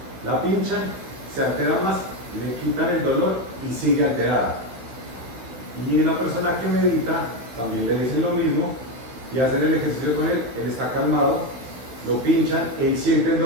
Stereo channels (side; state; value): left; late; 16 ms